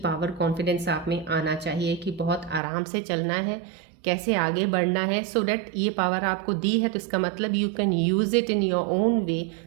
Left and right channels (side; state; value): left; drops out; at 2.6 s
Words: कॉन्फिडेंस आप में आना चाहिए कि बहुत आराम से चलना है, कैसे आगे बढ़ना है। सो डैट ये पावर आपको दी है तो इसका मतलब you can use it in your own way,